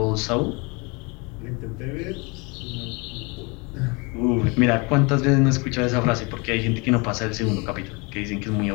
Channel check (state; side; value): quieter; right; 29.3 dB